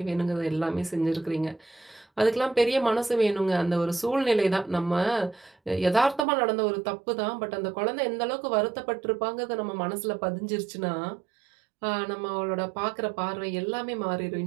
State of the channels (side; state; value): left; drops out; at 6.2 s